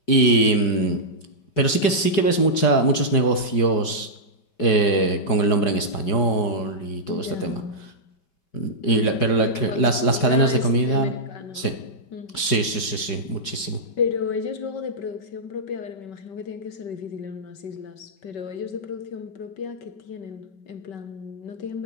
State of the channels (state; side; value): late; right; 4.8 ms